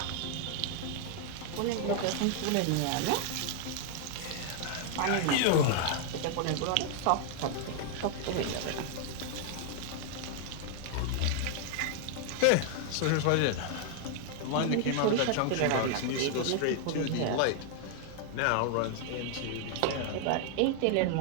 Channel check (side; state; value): both; different; correlation 0.00